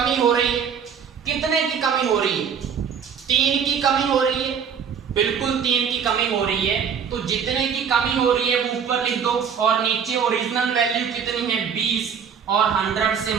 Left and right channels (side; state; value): left; quieter; 7.2 dB